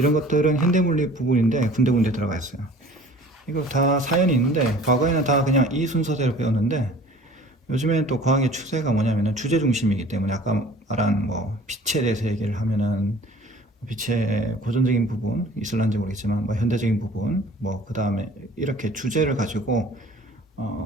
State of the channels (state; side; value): normal; both; correlation 0.48